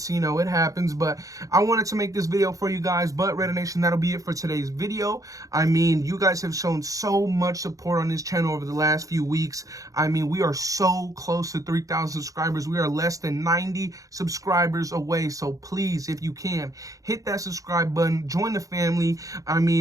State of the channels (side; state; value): left; late; 0.17 ms